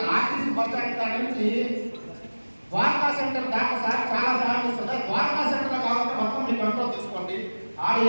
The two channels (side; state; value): both; inverted; correlation -1.00